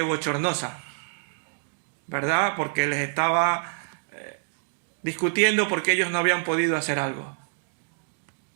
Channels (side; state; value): left; silent; digital silence